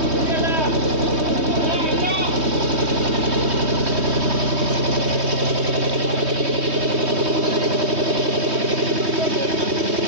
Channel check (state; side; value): late; left; 3.2 ms